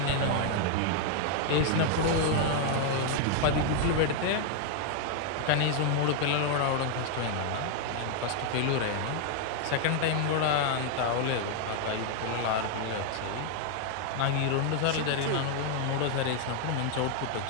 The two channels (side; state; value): both; different; correlation 0.00